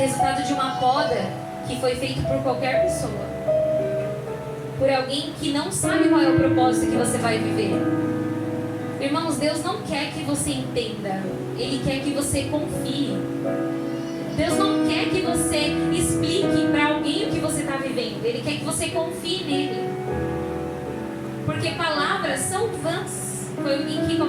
de uma poda que foi feita por qualquer pessoa. Por alguém que não sabe qual é o propósito que você vai viver. Irmãos, Deus não quer que você entenda. Ele quer que você confie. Deus não quer que você explique para alguém o que você está vivendo. Ele quer que você confie nele. Porque palavras são vãs. Foi alguém que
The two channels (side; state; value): both; identical; correlation 1.00